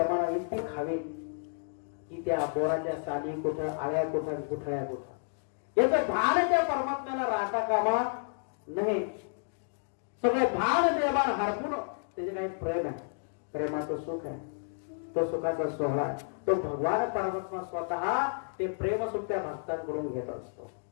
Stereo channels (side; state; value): right; silent; digital silence